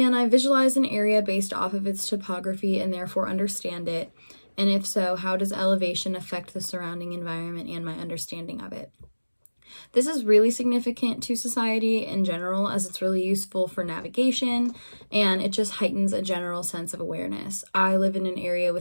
I visualize an area based off of its topography and therefore understand it? And if so, how does elevation affect the surrounding environment and my understanding of it? This is really significant to society in general, as it's really useful for navigation and it just heightens a general sense of awareness. I live in an area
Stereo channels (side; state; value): both; inverted; correlation -1.00